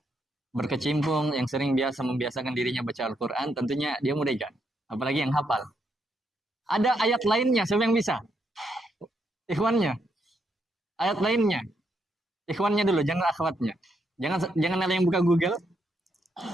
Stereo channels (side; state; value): both; normal; correlation 0.78